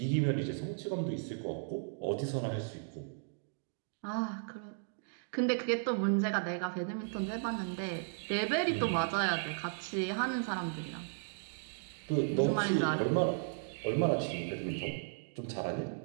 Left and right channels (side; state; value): left; silent; digital silence